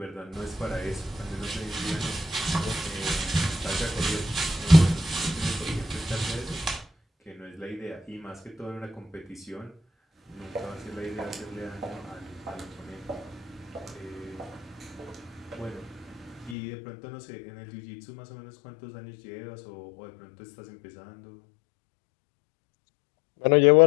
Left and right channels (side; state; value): right; drops out; at 16.6 s